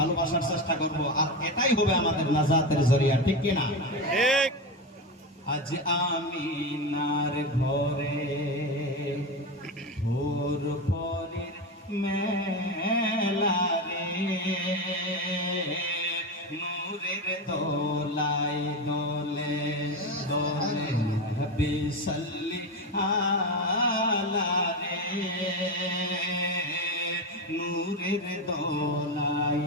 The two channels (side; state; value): both; normal; correlation 0.17